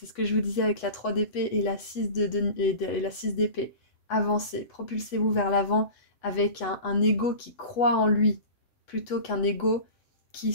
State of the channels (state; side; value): late; right; 8.0 ms